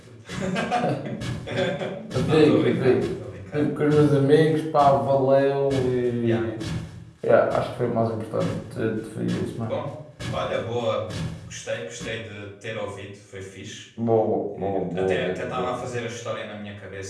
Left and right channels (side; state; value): both; identical; correlation 1.00